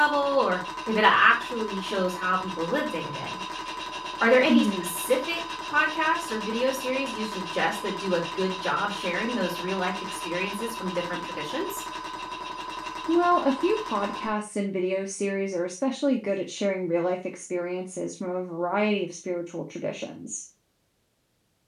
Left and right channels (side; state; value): both; identical; correlation 1.00